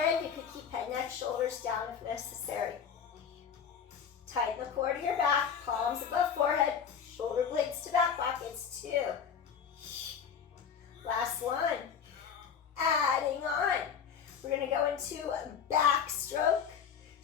you could keep head, neck, shoulders down if necessary. Tighten the core to your back, palms above forehead, shoulder blades to back pockets. 2. Last one. Adding on. We're going to go into a backstroke.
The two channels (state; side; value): quieter; right; 7.2 dB